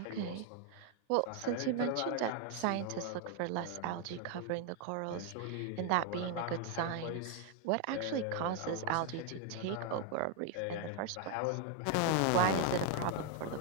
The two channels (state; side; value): different; both; correlation 0.00